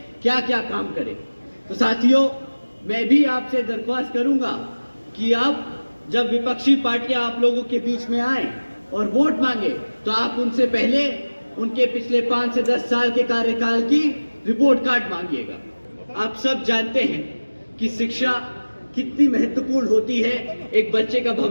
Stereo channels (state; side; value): inverted; both; correlation -1.00